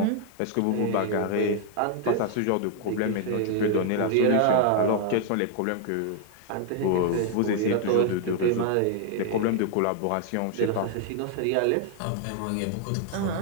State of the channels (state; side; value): different; both; correlation 0.00